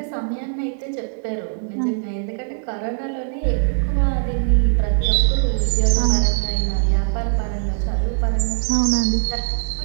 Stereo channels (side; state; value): left; silent; digital silence